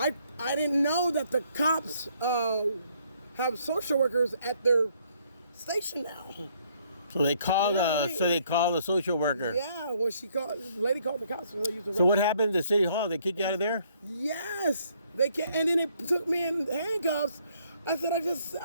didn't know that the cops have social workers at their station now. So they called a social worker. Yeah, well, the lady called the cops. So what happened to City Hall? They kicked you out of there? Yes, they can, and then they took me in handcuffs. I said,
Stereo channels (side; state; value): both; inverted; correlation -0.67